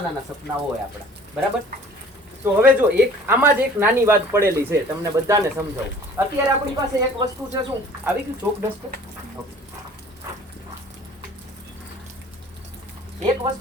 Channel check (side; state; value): both; normal; correlation 0.50